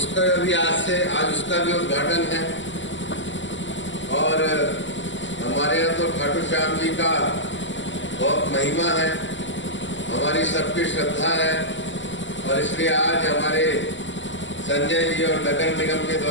भी आज उसका भी उद्घाटन है। और हमारे यहाँ तो खाटू श्याम जी का बहुत महिमा है, हमारी सबकी श्रद्धा है और इसलिए आज हमारे संजय जी और नगर निगम के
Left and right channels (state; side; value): late; right; 0.54 ms